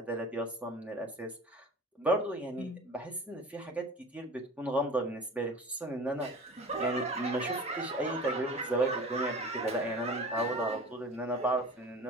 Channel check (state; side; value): normal; both; correlation 0.38